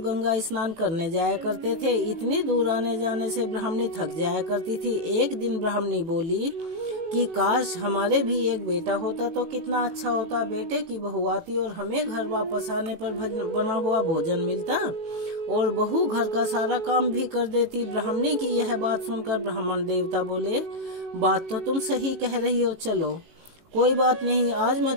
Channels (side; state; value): left; late; 18 ms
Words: स्नान करने जाया करते थे। इतनी दूर आने जाने से ब्राह्मणी थक जाया करती थी। एक दिन ब्राह्मणी बोली कि काश हमारे भी एक बेटा होता तो कितना अच्छा होता। बेटे की बहू आती और हमें घर वापस आने पर बना हुआ भोजन मिलता और बहू घर का सारा काम भी कर देती। ब्राह्मणी की यह बात सुनकर ब्राह्मण देवता बोले, बात तो तुम सही कह रही हो, चलो कोई बात नहीं, आज मैं